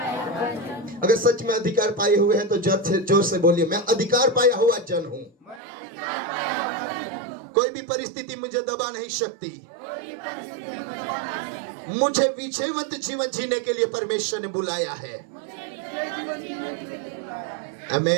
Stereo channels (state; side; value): drops out; left; at 5.6 s